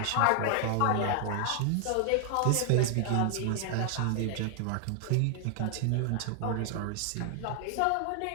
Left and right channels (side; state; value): both; different; correlation 0.00